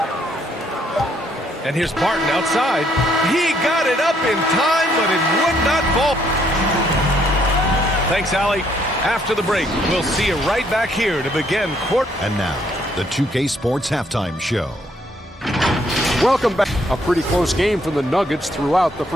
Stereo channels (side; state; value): both; normal; correlation 0.69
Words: And here's Barton outside. He got it up in time, but it would not fall. Thanks, Allie. After the break, we'll see you right back here to begin court. And now, the 2K Sports Halftime Show. Welcome back. A pretty close game for the Nuggets throughout the